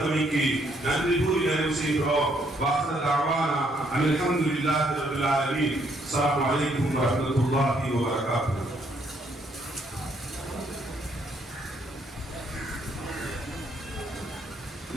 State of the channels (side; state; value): both; normal; correlation 0.70